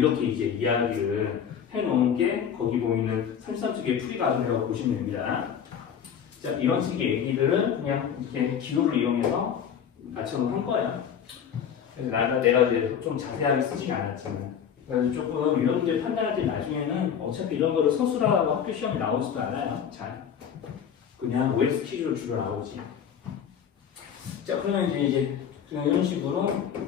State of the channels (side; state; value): right; quieter; 8.2 dB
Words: 이제 이야기를 해놓은 게 거기 보이는 33쪽의 풀이 과정이라고 보시면 됩니다. 자, 이런 식의 얘기들은 그냥 이렇게 기호를 이용해서 맞춰놓은 거예요. 그래서 내가 이제 좀 자세하게 쓰진 않았지만. 그래서 조금 이런 문제 판단할 때 나중에는 어차피 이런 거를 서술하고 학교 시험에 나오지도 않아요. 잘. 그냥 OS 퀴즈로 주로 나오지. 자, 그러면 이제 이런 식으로